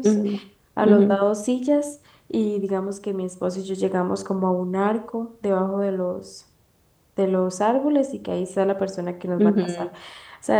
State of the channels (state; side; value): identical; both; correlation 1.00